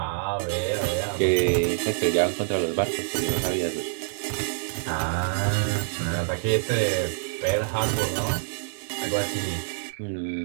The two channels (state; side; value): silent; left; 61 dB below the other